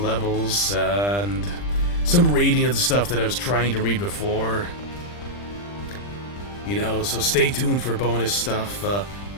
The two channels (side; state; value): right; late; 40 ms